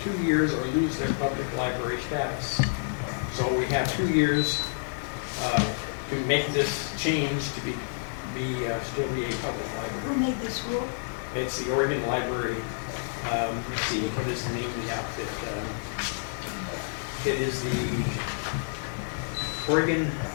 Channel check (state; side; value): silent; right; digital silence